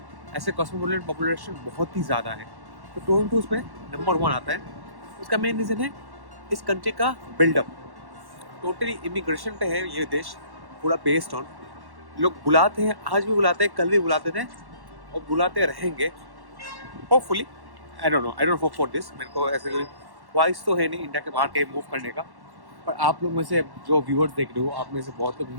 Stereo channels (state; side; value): late; left; 1.1 ms